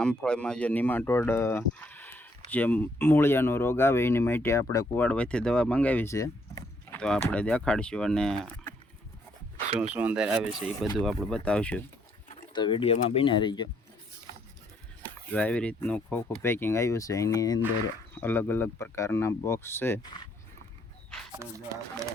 જે નિમાટોડ જે મૂળિયાનો રોગ આવે એની માટે આપણે કુવાડવાથી દવા મંગાવી છે. તો આપણે દેખાડશું અને શું શું અંદર આવે છે એ બધું આપણે બતાવશું. તો વિડીયોમાં બન્યા રહીજો. જો આવી રીતનું ખોખું પેકિંગ આવ્યું છે, એની અંદર અલગ અલગ પ્રકારના બોક્સ છે. તો જો આપણે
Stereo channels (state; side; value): normal; both; correlation 0.69